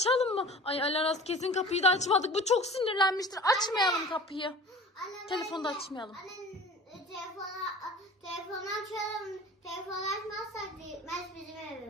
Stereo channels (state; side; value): normal; both; correlation 0.41